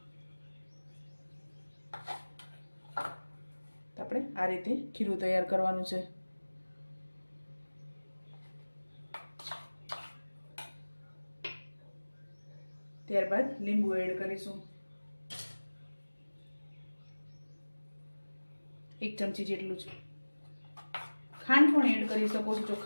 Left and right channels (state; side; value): inverted; both; correlation -1.00